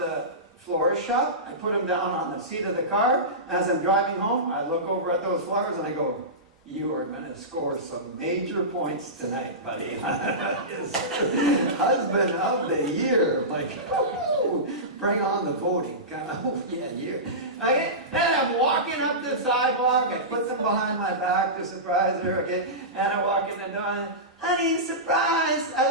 florist shop. I put them down on the seat of the car. As I'm driving home, I look over at those flowers and I go, you are going to score some major points tonight, buddy. Husband of the year. Like, oh, bring on the voting. Kind of, oh, yeah, you. Okay, then I'm walking up the sidewalk. I put them behind my back to surprise her. Okay, and I walk in the door and, honey, surprise, I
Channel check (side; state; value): both; normal; correlation -0.19